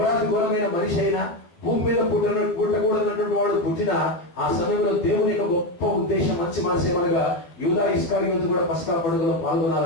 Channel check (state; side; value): late; right; 12 ms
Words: ఘోరమైన మనిషి అయినా, భూమి మీద పుట్టకూడనటువంటి వాడు పుట్టిన ఆ సమయంలో దేవుని యొక్క గొప్ప ఉద్దేశం, మంచి మనసు ఏమనగా యూదా ఇస్కారియోతు కూడా పస్కా పండుగలో